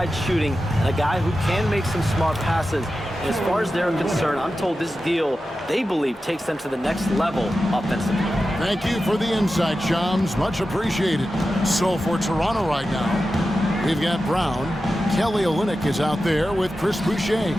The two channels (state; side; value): normal; both; correlation 0.92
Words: shooting and a guy who can make some smart passes. And as far as they're concerned, I'm told this deal, they believe, takes them to the next level offensively. Thank you for the insight, Shams. Much appreciated. So for Toronto right now, we've got Brown. Kelly Olynyk is out there with Chris Boucher.